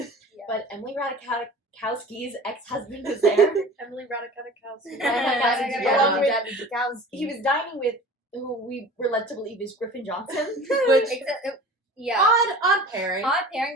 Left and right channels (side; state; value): both; normal; correlation 0.40